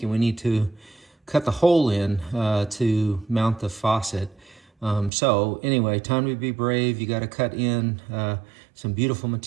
and we need to cut the hole in to mount the faucet. So anyway, time to be brave. You got to cut in some beautiful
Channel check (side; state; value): left; drops out; at 5.1 s